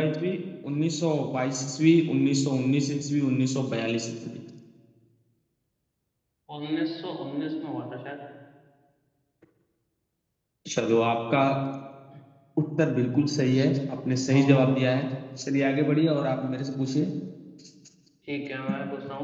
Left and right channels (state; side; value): identical; both; correlation 1.00